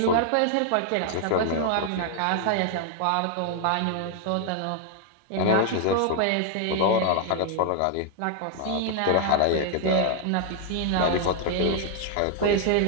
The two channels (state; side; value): different; both; correlation 0.00